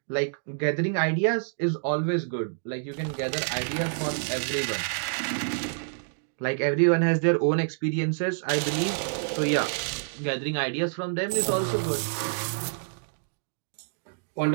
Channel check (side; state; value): left; silent; digital silence